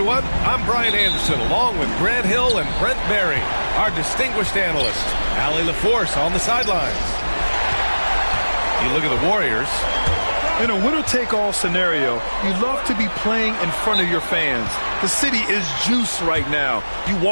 I'm Brian Anderson, along with Grant Hill and Brent Berry, our distinguished analyst. Allie LaForce on the sidelines. You look at the Warriors. In a winner-take-all scenario, you love to be playing in front of your fans. The city is juiced right now. You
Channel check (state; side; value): inverted; both; correlation -1.00